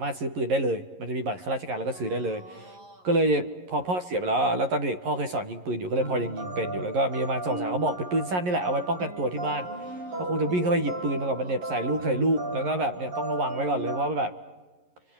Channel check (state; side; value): late; left; 11 ms